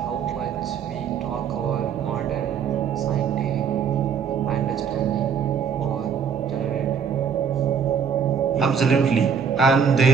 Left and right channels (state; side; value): quieter; left; 7.0 dB